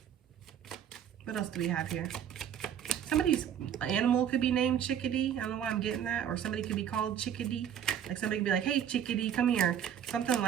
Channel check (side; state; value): left; quieter; 9.3 dB